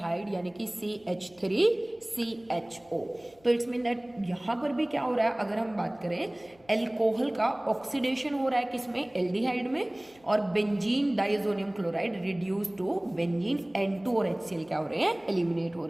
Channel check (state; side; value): noise; left; hum, 30 dB below the sound